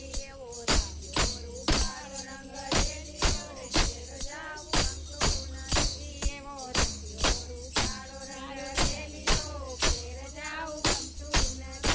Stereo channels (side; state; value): both; identical; correlation 1.00